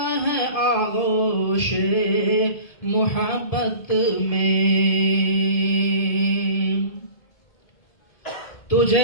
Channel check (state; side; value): late; right; 1.8 ms